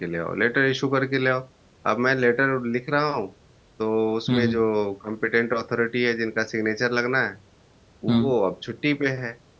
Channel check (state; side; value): identical; both; correlation 1.00